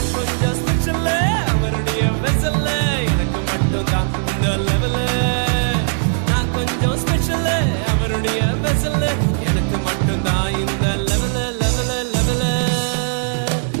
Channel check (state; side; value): silent; left; digital silence